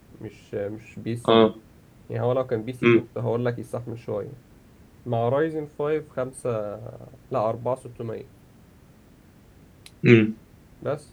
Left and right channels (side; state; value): both; identical; correlation 1.00